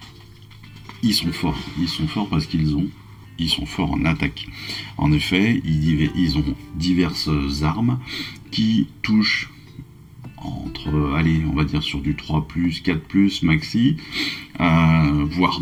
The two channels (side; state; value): both; identical; correlation 1.00